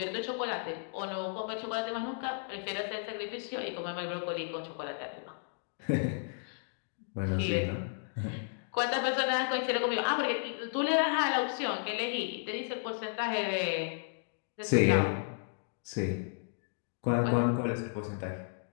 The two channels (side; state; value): right; silent; digital silence